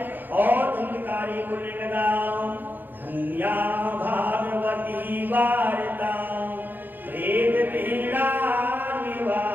और धुंधकारी बोलने लगा धन्या भागवती वार्ता प्रेत पीड़ा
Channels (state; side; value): late; left; 0.089 ms